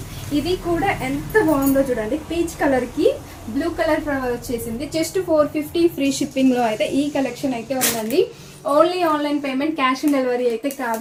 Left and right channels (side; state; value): both; identical; correlation 1.00